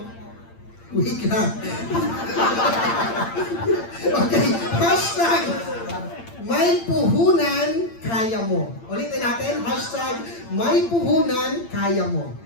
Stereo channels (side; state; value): right; late; 8.8 ms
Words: Wait lang. Okay. Hashtag may puhunan, kaya mo. Ulitin natin. Hashtag may puhunan, kaya mo.